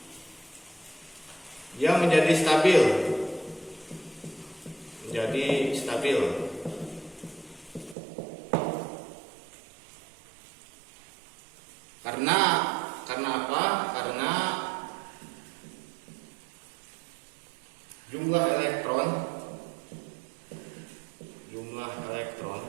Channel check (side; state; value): left; drops out; at 8.0 s